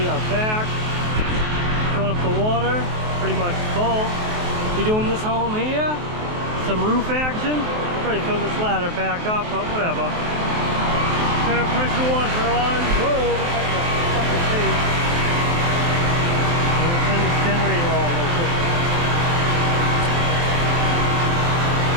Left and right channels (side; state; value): left; late; 23 ms